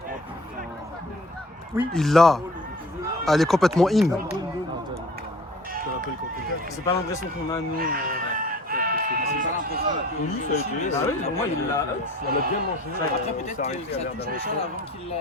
Il l'a. Elle est complètement in. C'est pas l'impression qu'on a, nous. Ah oui, pour moi, il l'a. On a bien mangé. Après, peut-être que ça touche le sol avant qu'il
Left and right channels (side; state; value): both; normal; correlation 0.46